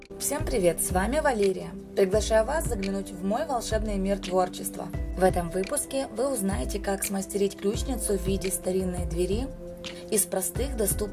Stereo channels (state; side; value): identical; both; correlation 1.00